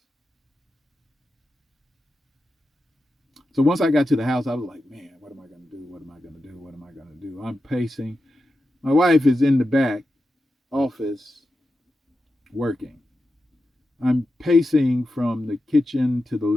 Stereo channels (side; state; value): both; normal; correlation 0.90